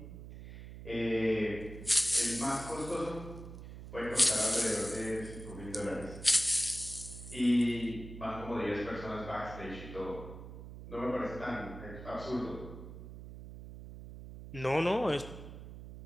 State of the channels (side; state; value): right; noise; hum, 12 dB below the sound